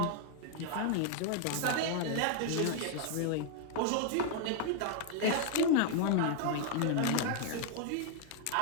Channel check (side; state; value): both; different; correlation 0.00